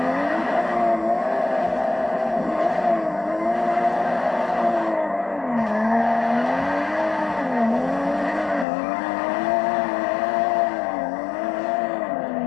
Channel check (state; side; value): drops out; right; at 8.7 s